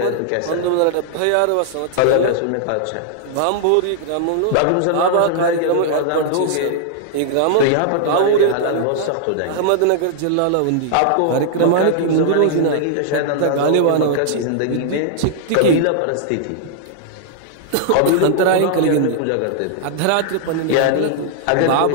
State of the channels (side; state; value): both; different; correlation -0.01